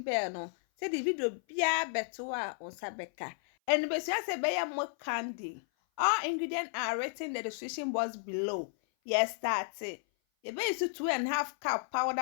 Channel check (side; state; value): right; silent; 56 dB below the other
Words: bell no. Say the video biya beto on sabeka. And be say be more candy. All ingredients are written in the description box below. Yes, start it. You be use 2.5 cup